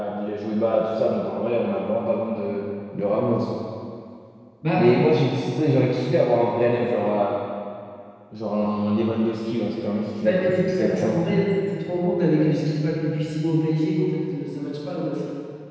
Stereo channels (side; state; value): both; identical; correlation 1.00